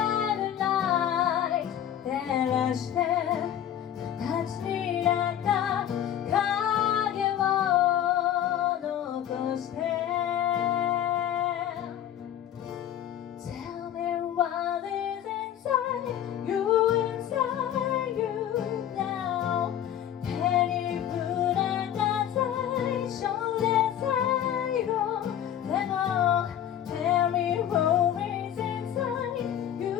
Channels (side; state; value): right; quieter; 10.6 dB